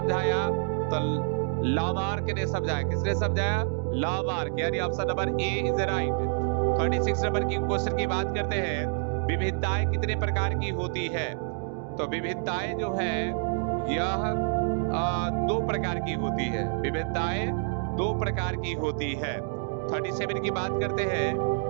तो लामार्क ने समझाया। किसने समझाया? लामार्क, यानी option number A is right. 36 number की क्वेश्चन की बात करते हैं। विविधताएं कितने प्रकार की होती है? तो विविधताएं जो है यह 2 प्रकार की होती है। विविधताएं 2 प्रकार की होती है। 37 की बात करते हैं।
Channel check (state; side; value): silent; left; 59 dB below the other